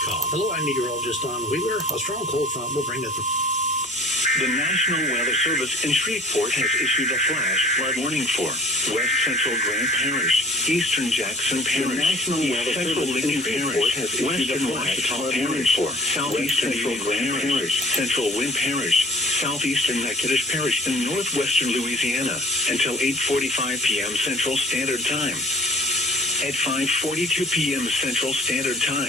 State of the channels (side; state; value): both; normal; correlation 0.48